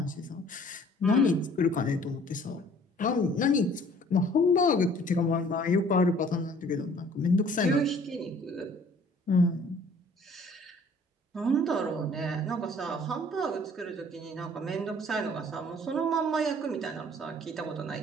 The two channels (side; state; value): both; normal; correlation 0.54